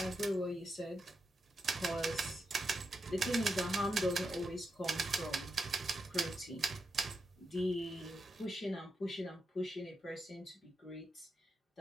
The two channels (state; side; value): normal; both; correlation 0.86